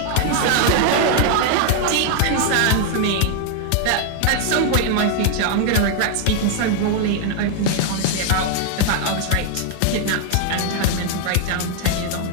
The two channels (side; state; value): both; different; correlation 0.00